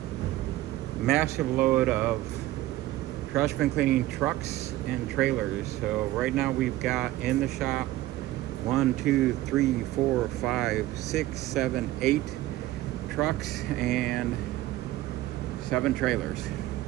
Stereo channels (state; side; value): quieter; left; 16.1 dB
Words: massive load of trash bin cleaning trucks and trailers. So right now we've got in the shop 1, 2, 3, 4, 5, 6, 7, 8 trucks and 7 trailers.